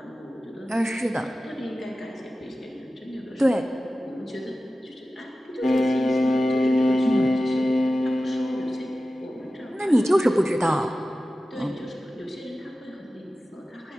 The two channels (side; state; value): both; normal; correlation 0.95